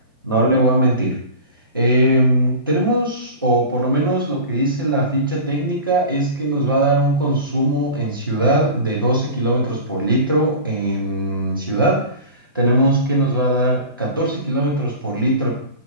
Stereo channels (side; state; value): both; inverted; correlation -0.34